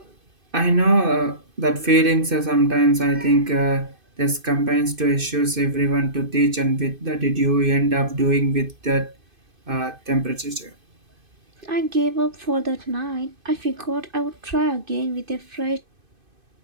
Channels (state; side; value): late; left; 2.5 ms